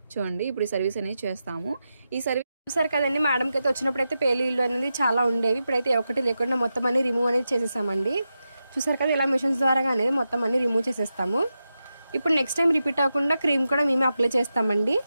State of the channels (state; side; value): inverted; both; correlation -0.89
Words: చూడండి ఇప్పుడు ఈ సర్వీస్ అనేది చేస్తాము. ఈ సర్వీస్ చూసారు కదండి, మేడంకి అయితే వచ్చినప్పుడు అయితే పేలీలు అనేది చాలా ఉండేవి. ఇప్పుడైతే ఒకటి లేకుండా మొత్తం అన్ని రిమూవ్ అనేది చేసేసామండి. చూసారు కదా, ఇలా మిషన్స్ ద్వారా అనేది మొత్తం అన్ని రిమూవ్ చేసేస్తాము. ఇప్పుడు నెక్స్ట్ టైం రిపీట్ అవ్వకుండా క్రీమ్ కూడా మేమే అప్లై చేస్తామండి.